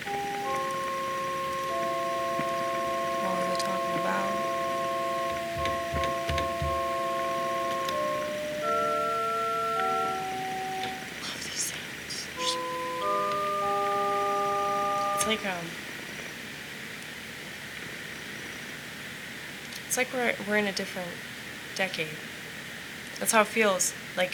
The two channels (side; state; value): both; identical; correlation 1.00